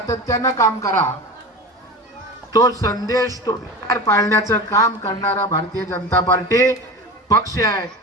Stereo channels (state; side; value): normal; both; correlation 0.30